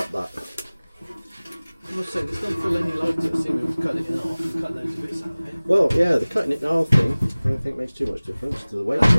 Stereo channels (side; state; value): both; inverted; correlation -1.00